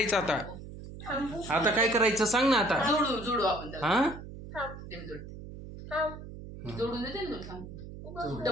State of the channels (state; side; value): noise; right; hum, 12 dB below the sound